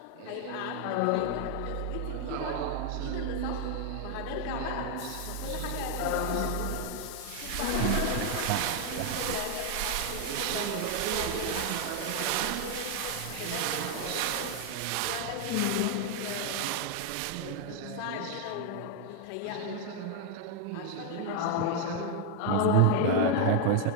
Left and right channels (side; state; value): both; different; correlation 0.00